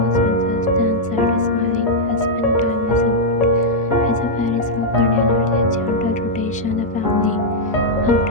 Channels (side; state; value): both; normal; correlation -0.05